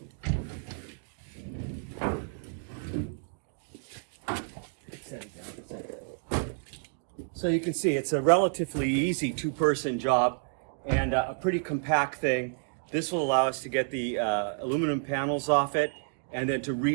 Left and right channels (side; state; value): left; silent; digital silence